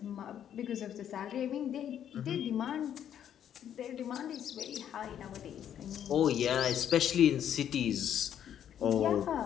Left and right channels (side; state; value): right; quieter; 9.8 dB